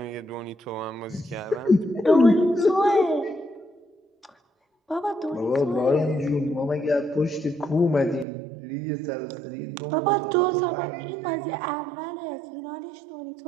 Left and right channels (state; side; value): drops out; left; at 8.2 s